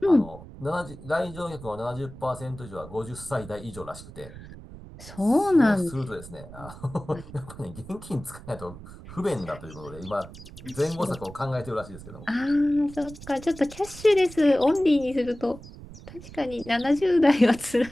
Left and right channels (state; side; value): noise; right; rumble, 16 dB below the sound